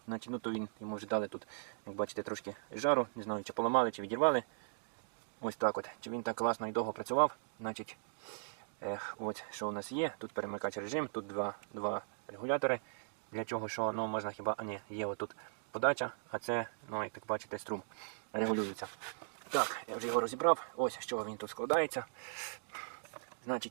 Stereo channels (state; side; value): silent; left; digital silence